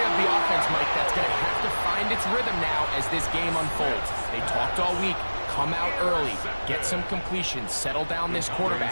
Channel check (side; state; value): both; inverted; correlation -1.00